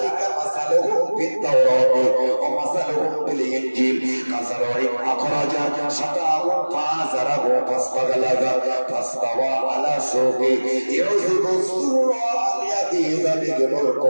مثلهم في التوراة ومثلهم في الإنجيل كزرع أخرج شطأه فآزره فاستغلظ فاستوى على سوقه يعجب الزراع ليغيظ بهم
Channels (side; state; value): both; inverted; correlation -1.00